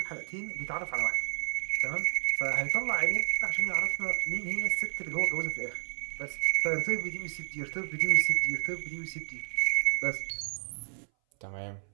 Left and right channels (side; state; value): left; silent; 57 dB below the other